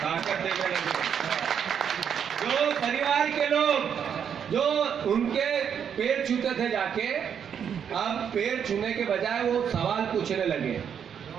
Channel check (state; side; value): quieter; left; 8.0 dB